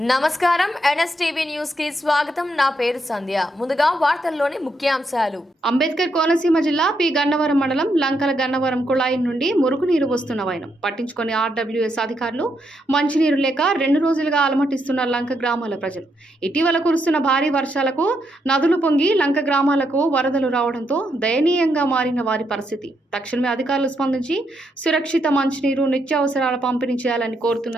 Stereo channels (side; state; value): both; normal; correlation 0.79